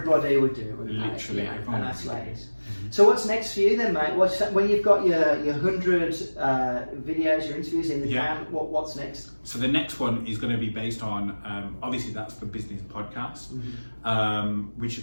would do it. Literally, and that's like it. So what's next for you then, mate? When you've got your 100 videos, your interviews in the can, what's next? So the next one is going to be based on, obviously that's the business podcast, which is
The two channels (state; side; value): inverted; both; correlation -1.00